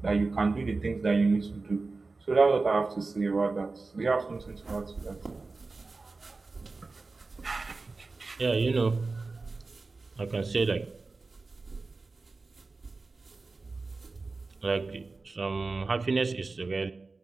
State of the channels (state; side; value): quieter; left; 3.8 dB